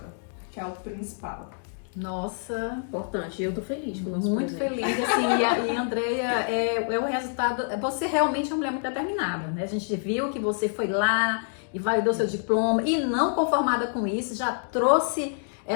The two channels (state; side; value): silent; right; digital silence